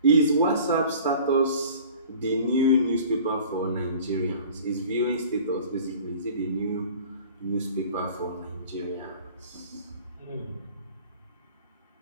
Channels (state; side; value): inverted; both; correlation -0.45